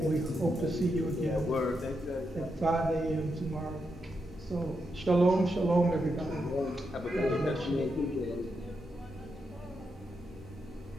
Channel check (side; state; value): both; normal; correlation 0.84